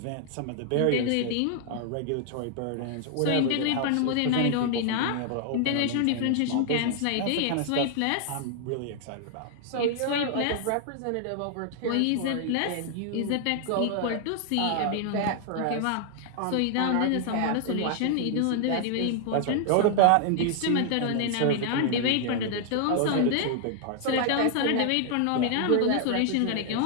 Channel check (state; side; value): different; both; correlation 0.00